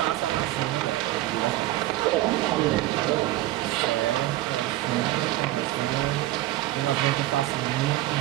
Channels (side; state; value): left; quieter; 15.9 dB